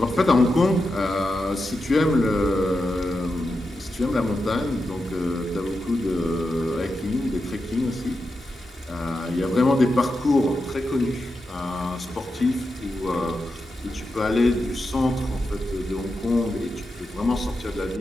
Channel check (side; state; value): both; normal; correlation 0.88